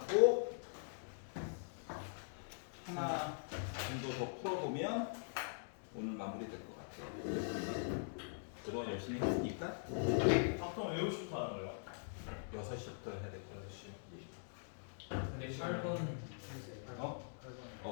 하나 정도 더 풀어보면 오늘 마무리될 것 같아요. 그동안 열심히 했으니까 보통 외우시부터 하는 거예요? 6시부터 해야 될 거야. 6시. 근데 8번 어?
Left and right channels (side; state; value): right; silent; digital silence